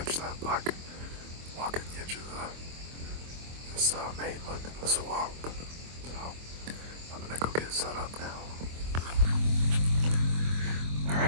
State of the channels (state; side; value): late; left; 24 ms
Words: that buck walking the edge of this mainland in the swamp. So I'm gonna go get set up now.